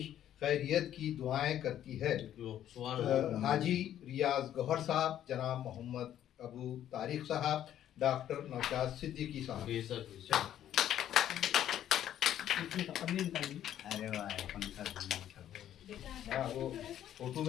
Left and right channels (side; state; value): right; quieter; 11.2 dB